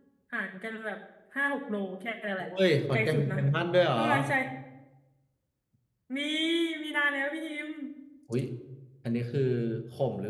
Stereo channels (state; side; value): identical; both; correlation 1.00